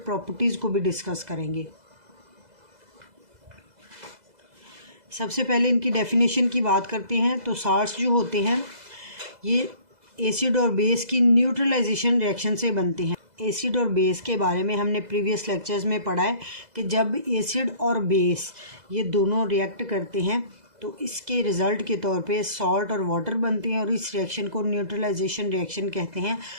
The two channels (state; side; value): late; left; 2.0 ms